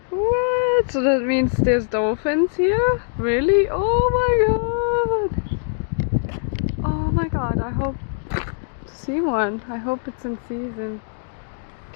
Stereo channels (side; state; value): right; silent; digital silence